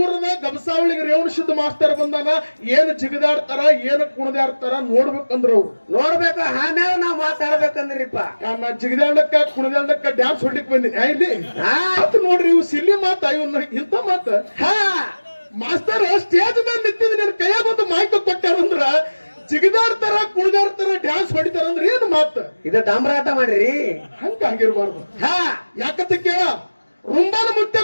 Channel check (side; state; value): both; inverted; correlation -1.00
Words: ಊರದ ಗಬಸಾವಳಿಗೆ ರೇವಣಸಿದ್ದ ಮಾಸ್ತರ್ ಬಂದಾನ. ಏನ್ ಜಿಗದಾಡ್ತಾರ ಏನ್ ಕುಣದಾಡ್ತಾರ ನೋಡ್ಬೇಕಂದ್ರ ಅವ್ರು ನೋಡ್ಬೇಕು. ಆಮೇಲೆ ನಾವ್ ಮಾತಾಡ್ಬೇಕಂದ್ರಿಪ್ಪ. ನಾ ಜಿಗದಾಡಕ್ಕ ಕುಣದಾಡಕ್ಕ ಡ್ಯಾನ್ಸ್ ಹೊಡ್ಲಿಕ್ ಬಂದಿನಿ ಇಲ್ಲಿ ನೋಡ್ರಿ. ಇವ್ ಸಿಲ್ಲಿ ಮಾತ ಇವನ್ನ ಇಂತ ಮಾತ ಮಾಸ್ತರ್ ಸ್ಟೇಜ್ ಮೇಲೆ ನಿಂತಿದ್ ನಿನ್ ಕೈಯಾಗ ಒಂದು ಮಾಹಿತಿ ಕೊಟ್ಟಾರಂದ್ರ ಜಿಗದಾಡ್ತಾರ ಕುಣಿದಾಡ್ತಾರ ಡ್ಯಾನ್ಸ್ ಹೊಡಿತಾರ ಅಂದ್ರೆ ಏನ್ ಮಾತ ಇದ ಡಾಮ್ರಾಟ ಮಾಡ್ರಿ. ಹಂಗಾಗಿರ್ಬಾರ್ದು. ಯಾಕಂತ ಕೇಳ ರುಂಬಾನ ಮುತ್ತೆ